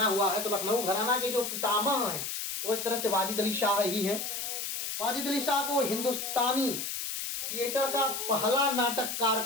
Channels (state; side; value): noise; left; hiss, 4 dB below the sound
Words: हुआ है। तो लखनऊ घराना के जो पितामह हैं वो एक तरह से वाजिद अली शाह ही हैं। वाजिद अली शाह को हिंदुस्तानी थिएटर का पहला नाटककार